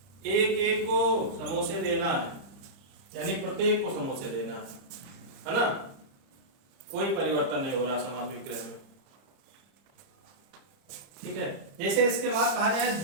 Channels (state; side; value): late; left; 30 ms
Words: एक एक को समोसे देना है, यानी प्रत्येक को समोसे देना है ना। कोई परिवर्तन नहीं हो रहा समास विग्रह में, ठीक है। जैसे इसके बाद कहा जाए